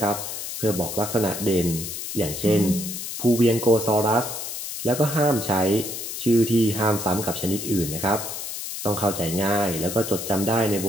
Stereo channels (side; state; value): left; noise; hiss, 6 dB below the sound